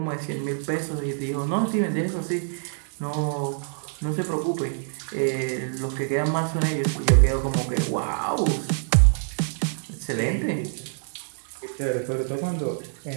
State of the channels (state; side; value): silent; left; digital silence